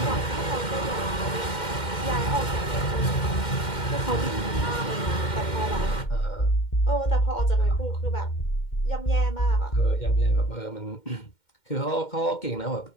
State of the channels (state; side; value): late; right; 2.1 ms